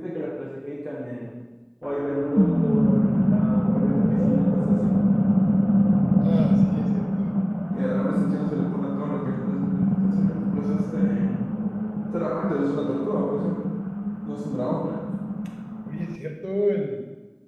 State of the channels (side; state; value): both; identical; correlation 1.00